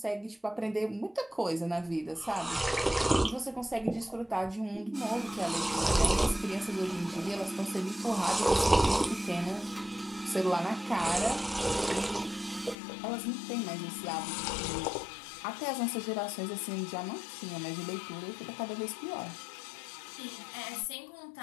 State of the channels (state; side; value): drops out; right; at 12.8 s